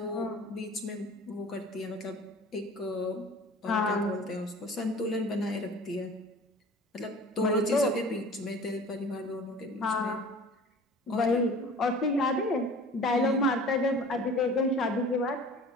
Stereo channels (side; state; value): both; normal; correlation 0.43